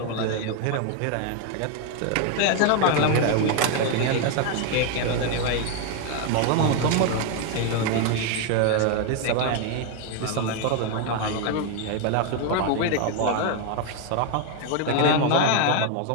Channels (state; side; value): different; both; correlation 0.01